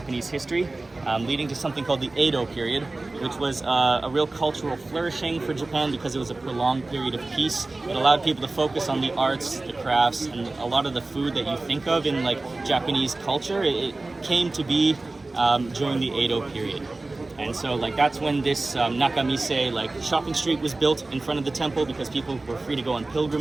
history, leading to something called the Edo period, which was a real cultural flourishing for Japan because it was a prolonged period of peace. It allowed people to focus on the arts, the crafts, and a lot of the food that you think of in Japanese culture. It came to be during the Edo period. And so that's when this Nakamise shopping street was built in front of the temple, because people were free to go on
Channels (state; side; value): quieter; left; 3.1 dB